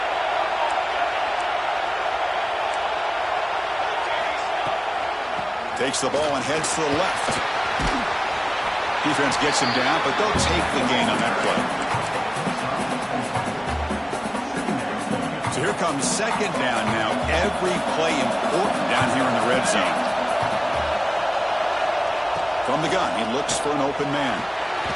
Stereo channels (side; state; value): both; identical; correlation 1.00